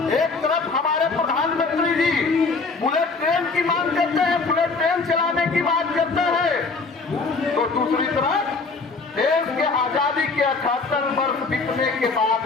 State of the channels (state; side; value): quieter; right; 4.1 dB